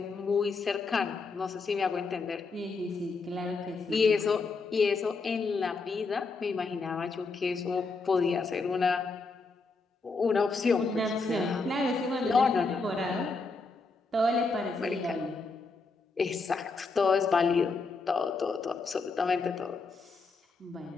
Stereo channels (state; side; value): quieter; right; 4.1 dB